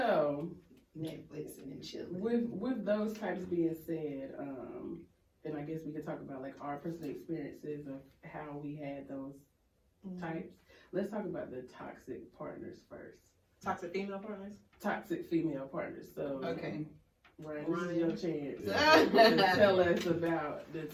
Netflix and then chilling. with those types being said, and I guess we could talk about like our personal experiences of how we had those types. Let's talk about the toxic partners first. Toxic female partners. Toxic female partners. So Okay. Ryan, this is your chance Yeah. to tell us about the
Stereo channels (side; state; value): both; identical; correlation 1.00